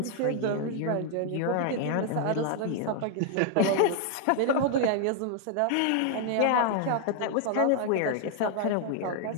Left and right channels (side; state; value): both; different; correlation 0.00